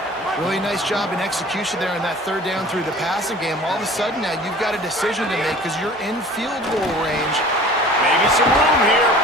Really nice job in execution there in that 3rd down through the passing game. All of a sudden now you've got a decision to make because you're in field goal range. Maybe some room here.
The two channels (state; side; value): normal; both; correlation 0.45